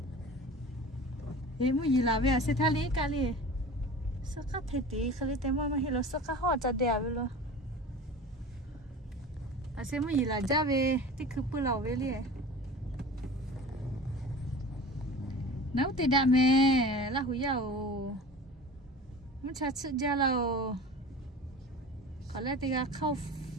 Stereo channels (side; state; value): both; normal; correlation 0.37